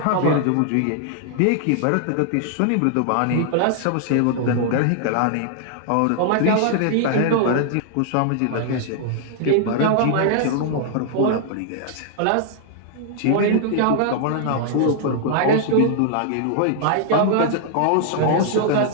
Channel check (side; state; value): both; different; correlation -0.01